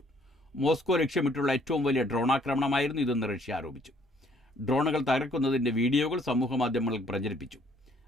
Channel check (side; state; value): both; normal; correlation 0.63